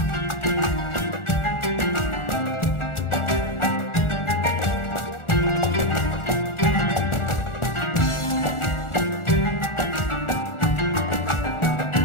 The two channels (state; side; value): late; right; 1.4 ms